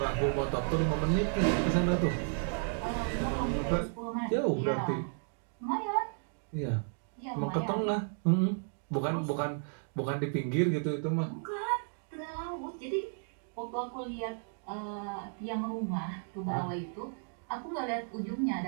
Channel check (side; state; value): left; silent; 56 dB below the other